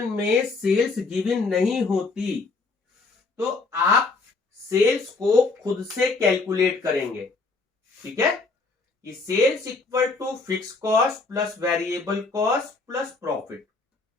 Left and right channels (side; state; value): right; quieter; 3.8 dB